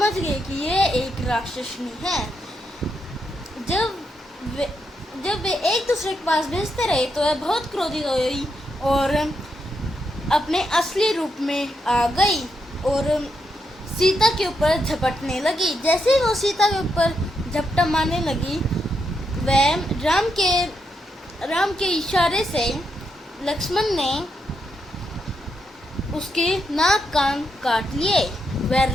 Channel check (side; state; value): both; normal; correlation 0.82